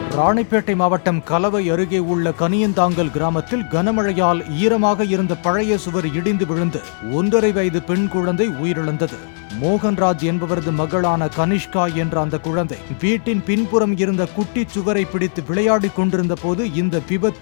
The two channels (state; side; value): silent; right; 67 dB below the other